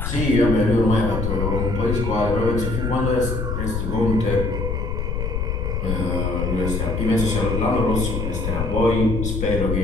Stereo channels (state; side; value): noise; left; rumble, 2 dB below the sound